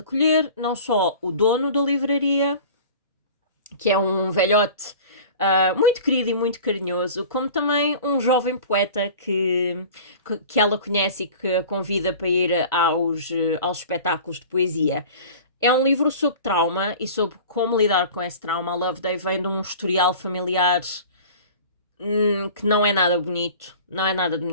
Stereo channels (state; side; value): inverted; both; correlation -0.41